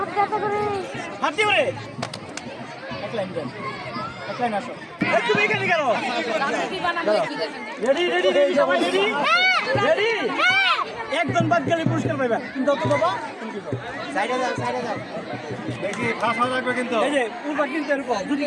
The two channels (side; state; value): both; identical; correlation 1.00